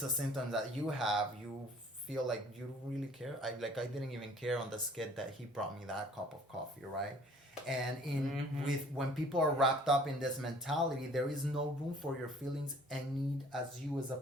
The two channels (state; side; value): normal; both; correlation 0.54